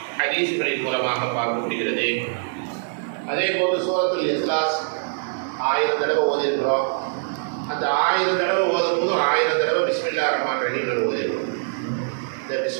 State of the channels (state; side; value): silent; left; 63 dB below the other